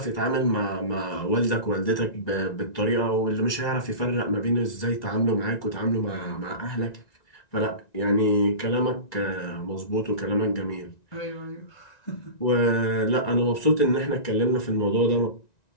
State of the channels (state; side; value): late; right; 1.9 ms